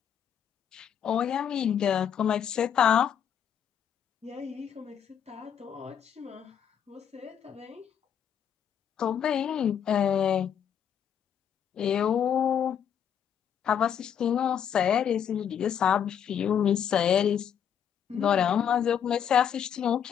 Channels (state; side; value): quieter; right; 8.6 dB